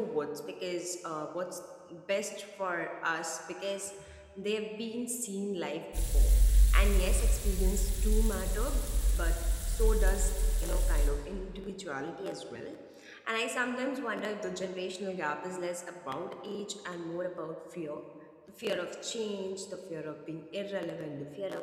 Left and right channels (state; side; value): identical; both; correlation 1.00